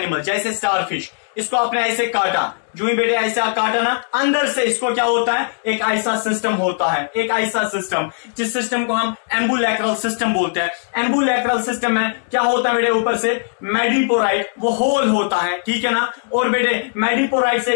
जैसे स्टारफिश, इसको आपने ऐसे काटा, जो ही बेटे ऐसा काटा ना, अंदर से इसको क्या होता है, एक ऐसा सिस्टम होता है, एक ऐसा सिस्टम जिस सिस्टम को हम एम्बुलैक्रल सिस्टम बोलते हैं। एम्बुलैक्रल सिस्टम में क्या होता है बेटे, ऊपर से मैडिपोराइट वो होल होता है, ठीक है ना। और बेटे मैडिपोराइट से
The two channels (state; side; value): silent; right; digital silence